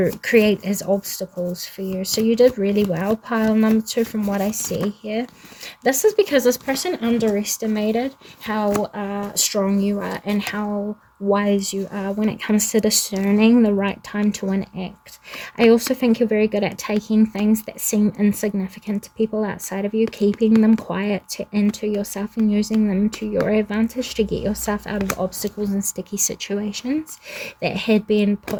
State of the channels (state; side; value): identical; both; correlation 1.00